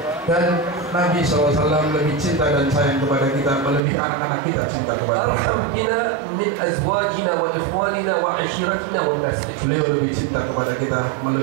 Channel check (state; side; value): drops out; left; at 3.8 s